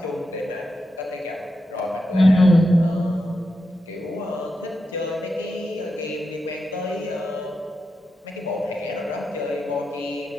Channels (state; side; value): normal; both; correlation 0.87